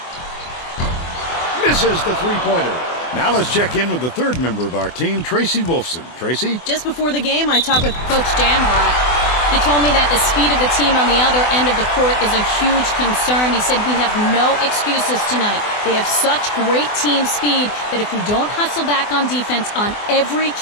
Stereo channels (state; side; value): late; right; 24 ms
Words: Misses the three-pointer. Now let's check in with the third member of our team, Tracy Wolfson. Tracy? Just before the game, I talked with Coach Dambrot. He told me that the speed of the team on the other end of the court is a huge concern. He said we have no excuses tonight. They have such great team speed that if we don't hustle back on defense on every